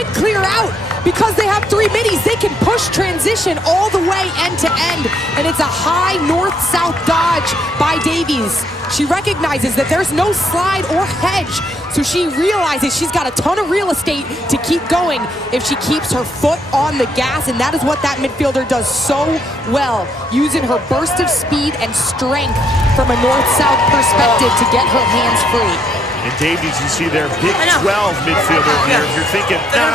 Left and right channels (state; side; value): normal; both; correlation 0.72